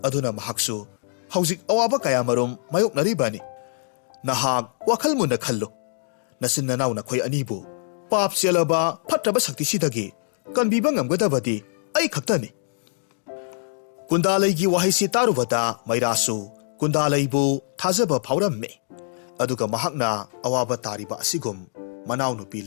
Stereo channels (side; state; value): right; silent; digital silence